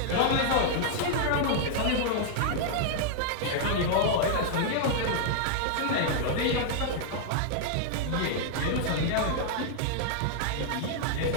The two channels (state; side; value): different; both; correlation -0.01